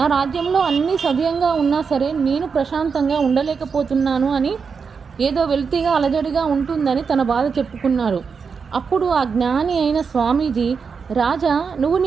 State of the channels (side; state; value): left; quieter; 5.7 dB